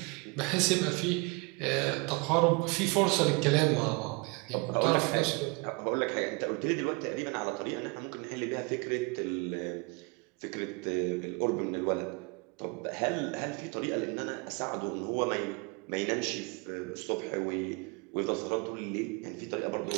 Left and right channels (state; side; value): quieter; left; 29.2 dB